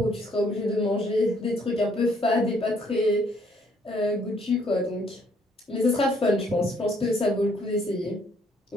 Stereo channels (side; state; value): both; normal; correlation 0.66